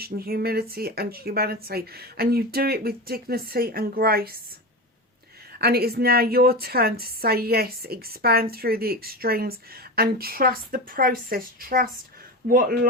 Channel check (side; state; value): both; normal; correlation 0.23